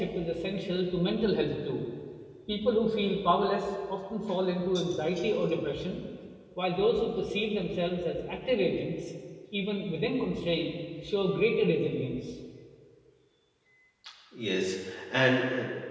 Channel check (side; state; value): both; identical; correlation 1.00